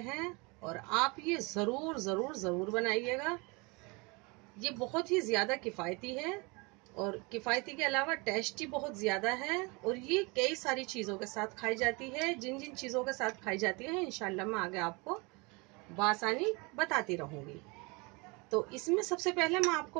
और आप ये ज़रूर ज़रूर ज़रूर बनाइएगा। ये बहुत ही ज़्यादा किफ़ायती है और किफ़ायती के अलावा टेस्टी बहुत ज़्यादा है और ये कई सारी चीज़ों के साथ खाई जाती है। जिन जिन चीज़ों के साथ खाई जाती है इंशाल्लाह मैं आगे आपको बआसानी बताती रहूँगी। तो इसमें सबसे पहले मैं आपको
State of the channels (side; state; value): left; quieter; 28.0 dB